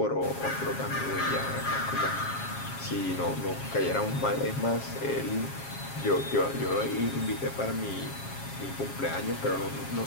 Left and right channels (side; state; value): right; late; 7.3 ms